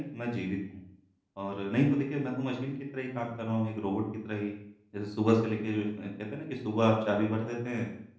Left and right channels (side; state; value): both; identical; correlation 1.00